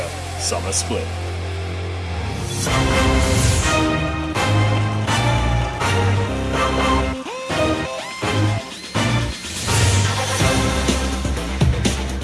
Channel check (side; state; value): both; identical; correlation 1.00